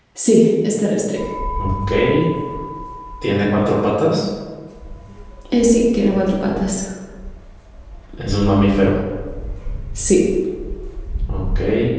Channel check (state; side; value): identical; both; correlation 1.00